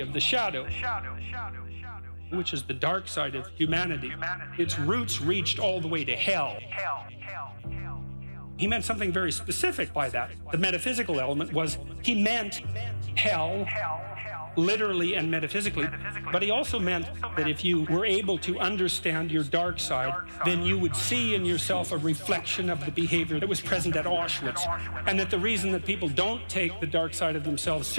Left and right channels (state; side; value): inverted; both; correlation -1.00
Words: of the shadow, which is the dark side of humanity. Its roots reached all the way to hell. He meant something very specific by that. The metaphysical element was, he meant hell, literally and metaphysically, but he also meant that if you were able to understand your dark side, then you would see in yourself a reflection of the behavior that was present at Auschwitz, and that the reason that people don't take the dark side of themselves